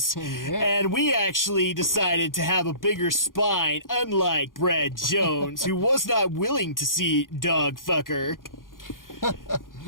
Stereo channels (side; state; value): right; late; 0.90 ms